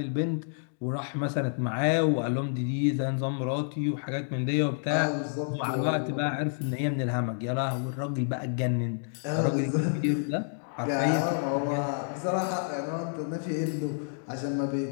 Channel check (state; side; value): silent; right; digital silence